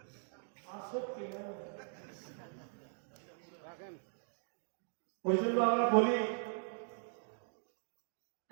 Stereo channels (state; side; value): silent; left; digital silence